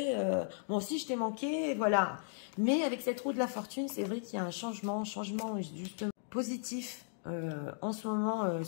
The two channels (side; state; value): right; silent; digital silence